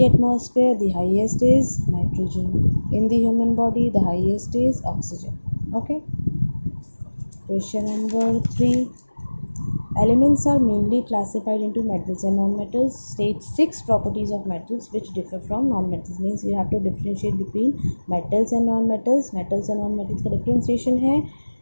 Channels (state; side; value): inverted; both; correlation -1.00